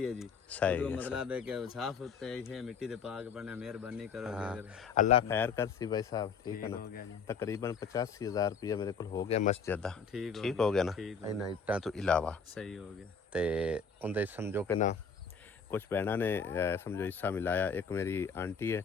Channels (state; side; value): quieter; right; 5.4 dB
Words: ਹੈ ਜੀ ਸਹੀ ਉਦੋਂ ਮਤਲਬ ਹੈ ਕਿ ਸਾਫ ਉੱਤੇ ਇਹ ਮਿੱਟੀ ਦੇ ਪਾ ਕੇ ਪੜਨਾ ਮਿਹਰਬਾਨੀ ਕਰੋਗੇ ਅੱਲਾ ਖੈਰ ਕਰ ਸੀ ਭਾਈ ਸਾਹਿਬ ਠੀਕ ਹੈ ਨਾ ਹੋ ਗਿਆ ਜੀ ਤਕਰੀਬਨ 85000 ਰੁਪਇਆ ਮੇਰੇ ਕੋਲ ਹੋ ਗਿਆ ਮਸਜਿਦ ਦਾ ਠੀਕ ਹੋ ਗਿਆ ਨਾ ਇਹਨਾਂ ਇੱਟਾਂ ਤੋਂ ਇਲਾਵਾ ਸਹੀ ਹੋ ਗਿਆ ਤੇ ਉਹਦੇ ਸਮਝੋ ਕਿ ਨਾ ਕੁਝ ਭੈਣਾਂ ਨੇ ਸਮਝੋ ਹਿੱਸਾ ਮਿਲਾਇਆ ਇੱਕ ਮੇਰੀ ਆਂਟੀ ਹੈ